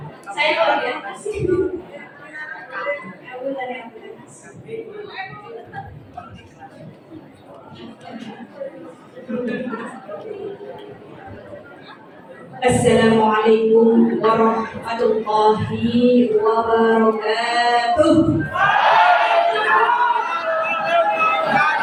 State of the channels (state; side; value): identical; both; correlation 1.00